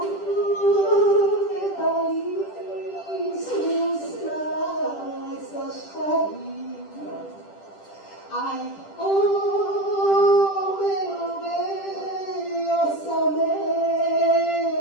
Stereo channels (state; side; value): late; right; 10 ms